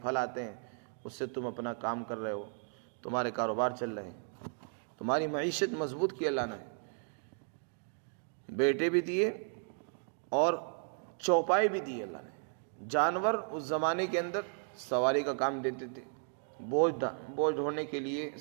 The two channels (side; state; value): left; silent; 55 dB below the other